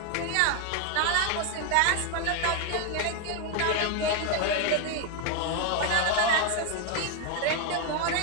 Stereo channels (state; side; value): different; both; correlation 0.01